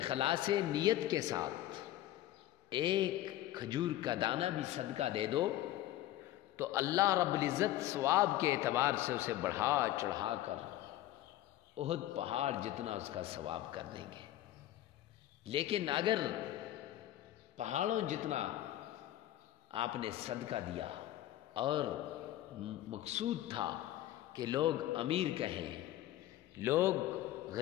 نیت کے ساتھ 1 کھجور کا دانہ بھی صدقہ دے دو تو اللہ رب العزت ثواب کے اعتبار سے اسے بڑھا چڑھا کر احد پہاڑ جتنا اس کا ثواب کر دیں گے۔ لیکن اگر پہاڑوں جتنا آپ نے صدقہ دیا اور مقصود تھا کہ لوگ امیر کہیں، لوگ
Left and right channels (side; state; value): right; quieter; 14.1 dB